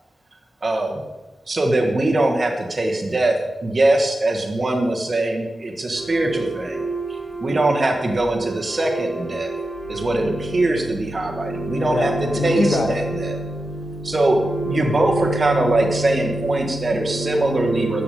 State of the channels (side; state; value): both; normal; correlation 0.91